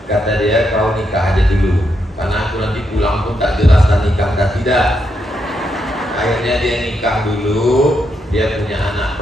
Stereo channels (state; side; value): normal; both; correlation 0.81